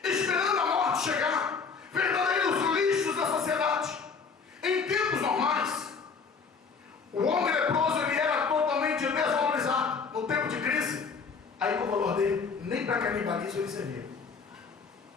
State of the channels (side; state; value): right; quieter; 5.4 dB